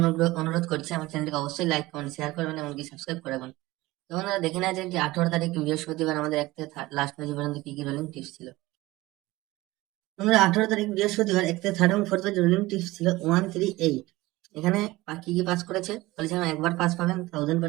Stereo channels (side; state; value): left; quieter; 19.3 dB